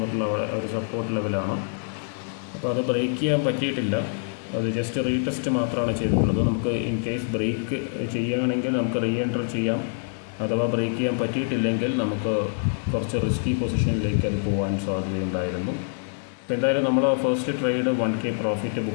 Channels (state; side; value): silent; right; digital silence